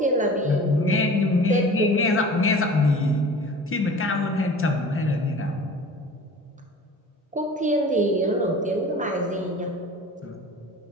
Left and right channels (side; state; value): both; normal; correlation 0.41